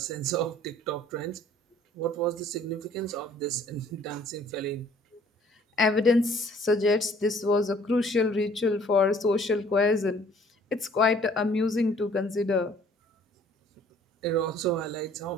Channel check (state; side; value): normal; both; correlation 0.57